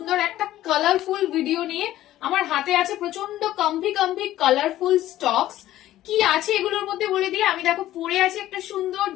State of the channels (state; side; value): quieter; right; 14.0 dB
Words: একটা কালারফুল ভিডিও নিয়ে। আমার হাতে আছে প্রচন্ড কমফি কালারফুল স্টকস। কি আছে এগুলোর মধ্যে বলে দিয়ে, আমি দেখো পরে আছে একটা সুন্দর